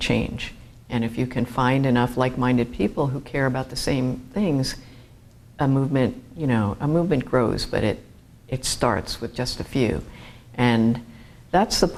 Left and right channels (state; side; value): identical; both; correlation 1.00